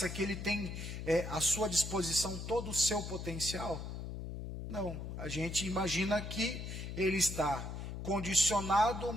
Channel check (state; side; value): noise; left; hum, 7 dB below the sound